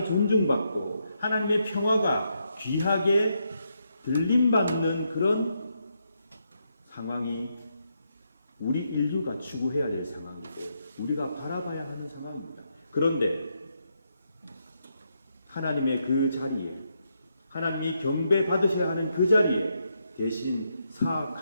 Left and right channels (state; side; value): inverted; both; correlation -0.80